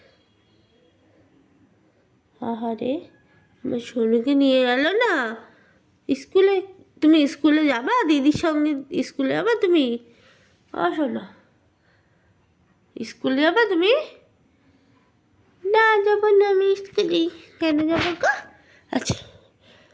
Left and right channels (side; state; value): both; identical; correlation 1.00